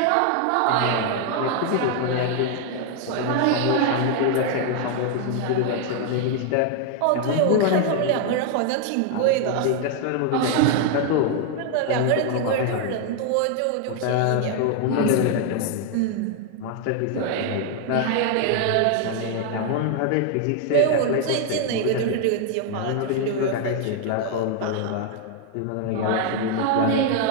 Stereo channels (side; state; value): both; different; correlation 0.00